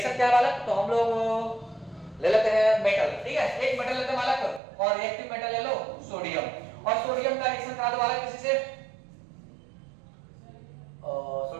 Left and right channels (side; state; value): left; drops out; at 4.6 s